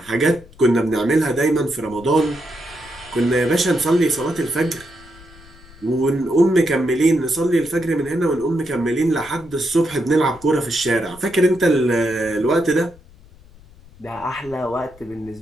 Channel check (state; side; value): noise; left; rumble, 23 dB below the sound